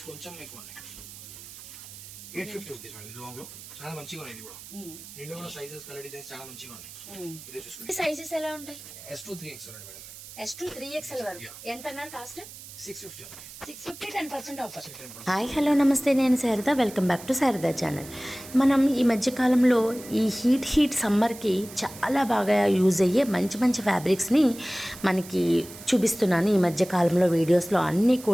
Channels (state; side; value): noise; right; hiss, 15 dB below the sound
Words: కొంచెం ఎక్కువ ఉన్నాయి, 850 రూపీస్ మేడం. ఇది లాంగ్ లో చాలా మంచిగా ఉన్నాయి. ఇది కూడా దీంట్లో కూడా సైజెస్, కలర్ డిజైన్స్ చాలా మంచిగా ఉన్నాయి. ఇదే చూసుకోండి. సైజెస్ ఎలా ఉంటాయి? S2 3XL ఉంది మేడం. S2 3XL వరకు ఎంత అన్నారు కాస్ట్? 650. 10% ఆఫర్. హాయ్ హలో నమస్తే, నేను Sharada. Welcome back to Sharada channel. మనం ఈ మధ్యకాలంలో ఈ హీట్ సమ్మర్కి చాలా బాగా యూజ్ అయ్యే మంచి మంచి ఫ్యాబ్రిక్స్ని మనకి చూపిస్తున్నాను ఈ మధ్యకాలంలో వీడియోస్లో. అన్నీ